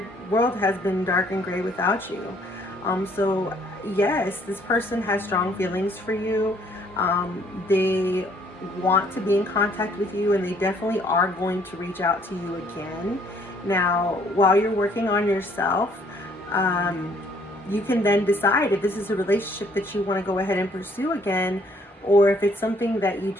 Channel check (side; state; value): both; normal; correlation 0.63